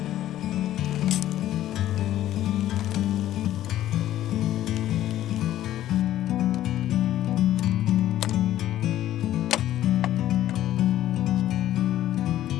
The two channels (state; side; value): quieter; right; 13.0 dB